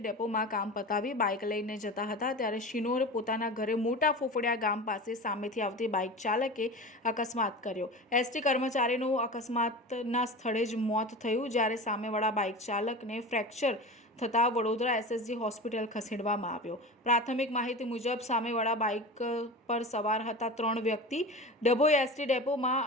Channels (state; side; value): normal; both; correlation 0.31